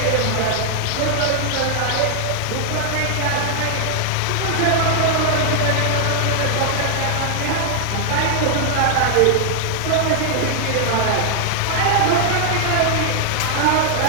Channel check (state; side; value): different; both; correlation 0.00